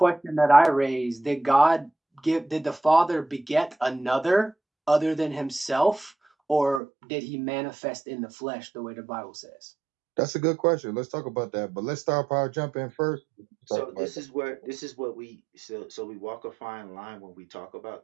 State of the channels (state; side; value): drops out; left; at 6.8 s